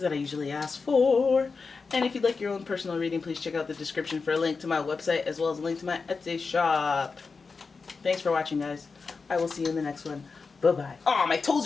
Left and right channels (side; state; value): right; quieter; 4.6 dB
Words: I usually ask for. And if you'd like your own personal reading, please check out the description for a link to my website as well as a link to my Etsy shop. Thanks for watching, guys. I will see you in the next one. Bye-bye. Oh, my